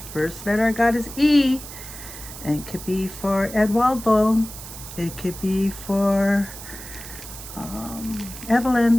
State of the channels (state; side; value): noise; right; hiss, 13 dB below the sound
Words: first letter I got is E. And it could be for Eduardo. It could be for